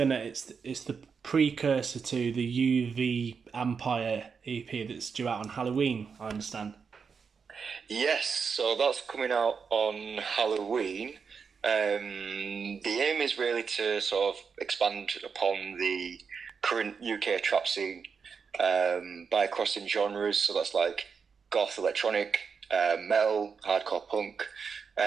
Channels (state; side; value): quieter; left; 5.8 dB